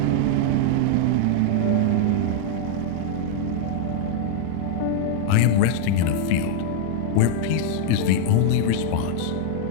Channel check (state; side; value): different; both; correlation -0.01